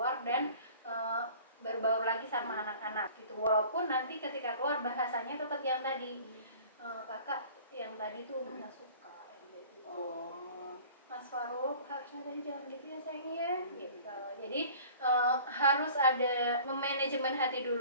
dan berbaur lagi sama anak-anak gitu. Walaupun nanti ketika keluar bahasanya tetap yang tadi, kakak yang tadi tuh nggak suka yang kayak gitu. Mas Faruk harusnya tadi jangan gitu ya sayangnya gitu. Jadi harus ada memanajemen hati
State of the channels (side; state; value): both; inverted; correlation -0.47